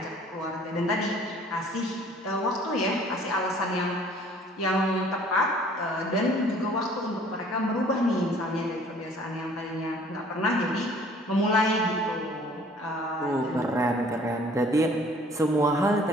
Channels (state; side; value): normal; both; correlation 0.54